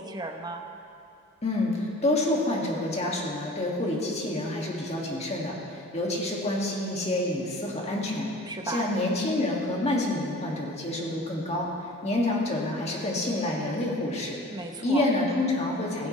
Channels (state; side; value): normal; both; correlation 0.44